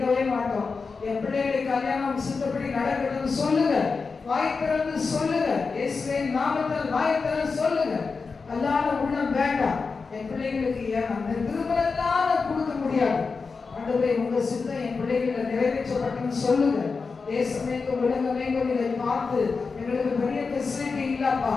மாட்டோம். என் பிள்ளைகளுடைய கல்யாணம் சித்தப்படி நடக்கிறதுன்னு சொல்லுங்க. வாய் திறந்து சொல்லுங்க. இயேசுவின் நாமத்தில் வாய் திறந்து சொல்லுங்க. அல்லாத உள்ளம் வேண்டாம். என் பிள்ளைகளுக்கு அந்த திருமணத்தால கொடுக்க முடியாது. ஆண்டவரே, உங்க சித்தம் என் பிள்ளைகளை நிறைவேற்றப்பட்டுன்னு சொல்லுங்க. தேசமேங்கும் உலகமேங்கும் இதை பார்த்து எங்களுக்கு பெரிய ஃபெசிலிட்டி இல்லப்பா,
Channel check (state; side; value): quieter; right; 4.7 dB